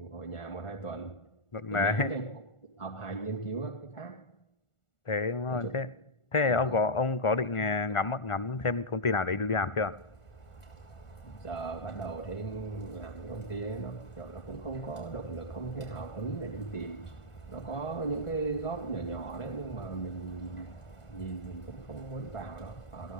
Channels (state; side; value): late; right; 1.4 ms